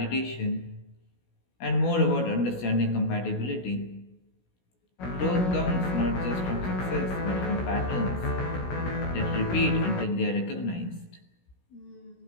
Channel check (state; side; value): late; right; 16 ms